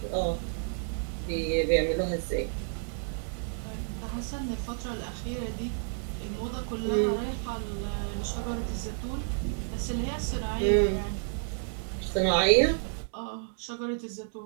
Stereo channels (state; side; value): silent; left; 57 dB below the other